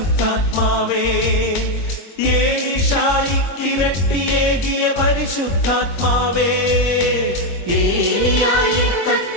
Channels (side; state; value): right; late; 22 ms